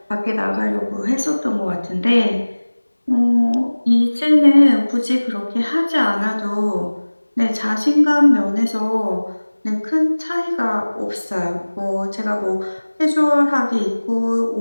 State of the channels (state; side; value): inverted; both; correlation -1.00